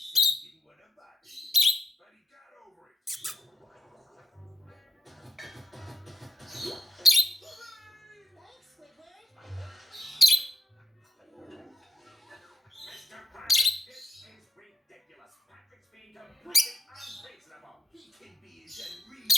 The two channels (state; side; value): normal; both; correlation 0.81